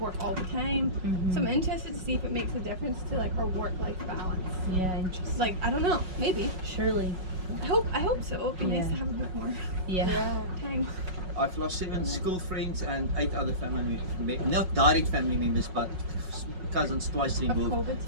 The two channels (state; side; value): late; left; 5.4 ms